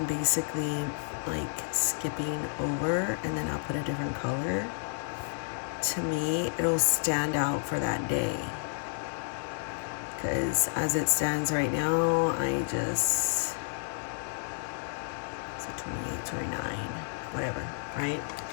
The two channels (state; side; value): silent; right; digital silence